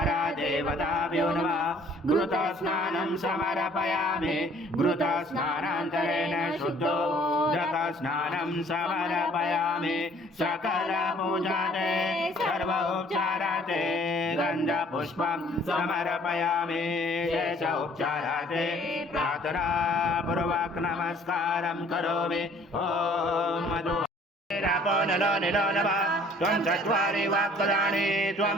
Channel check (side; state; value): both; normal; correlation 0.57